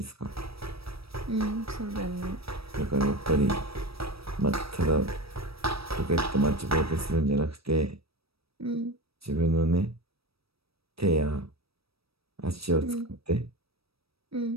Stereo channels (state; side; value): late; left; 0.77 ms